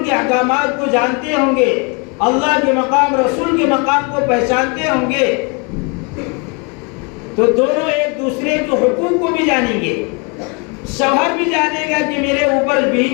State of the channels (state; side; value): quieter; right; 31.8 dB